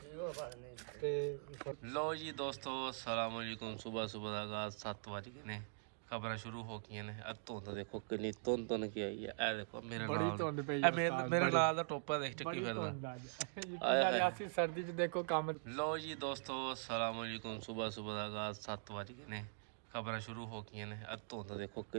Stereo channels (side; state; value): left; silent; digital silence